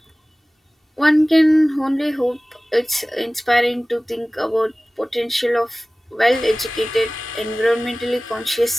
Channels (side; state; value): both; normal; correlation 0.98